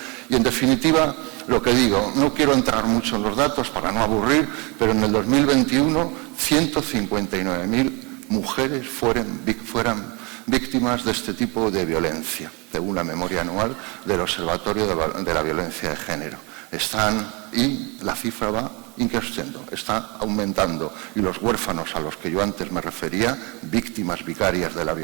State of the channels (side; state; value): left; quieter; 29.7 dB